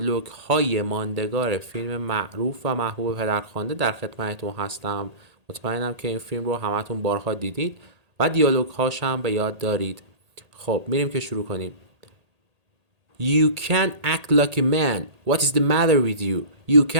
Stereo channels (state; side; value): late; left; 1.8 ms